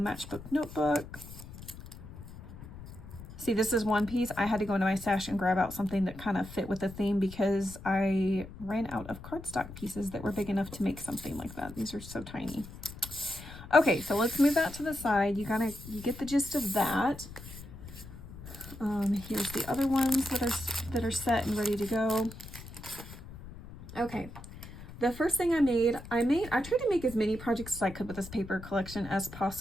notebook. See, this is one piece. I had to go into my stash and grab out something that kind of fit with the theme because I ran out of cardstock pieces that were big enough to make something like that. These are so tiny. Okay, so let's move that to the side. You get the gist of that. Here's the other ones that are set and ready to go. Okay. The first thing I tried to make as many projects as I could with this paper collection as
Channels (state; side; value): noise; left; rumble, 14 dB below the sound